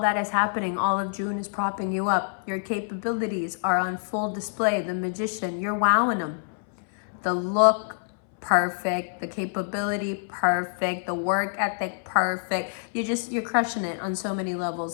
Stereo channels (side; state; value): right; silent; 61 dB below the other